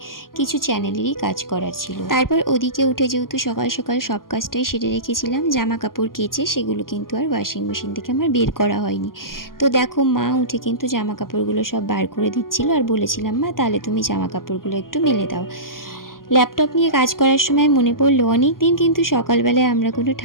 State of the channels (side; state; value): right; late; 0.91 ms